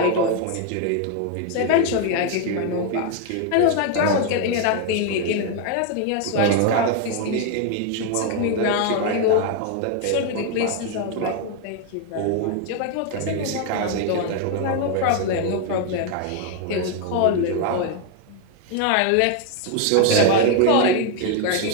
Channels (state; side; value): different; both; correlation 0.01